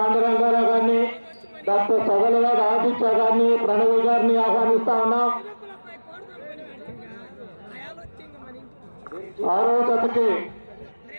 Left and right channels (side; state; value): both; inverted; correlation -1.00